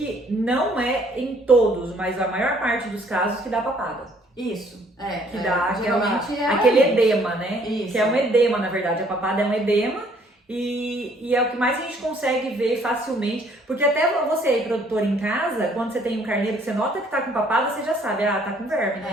não é em todos, mas a maior parte dos casos que dá papada. Isso, que dá geralmente aquele edema, né? Isso. Que é um edema, na verdade. A papada é um edema e é o que mais a gente consegue ver facilmente. Porque até você aí, produtor em casa, quando você tem um carneiro que você nota que tá com papada, você já sabe, tá com verme,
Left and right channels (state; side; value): normal; both; correlation 0.62